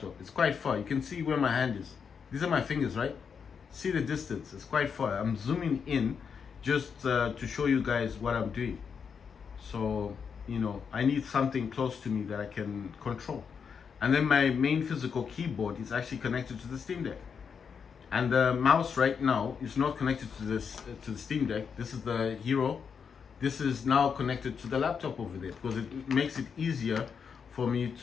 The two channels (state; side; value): quieter; right; 6.5 dB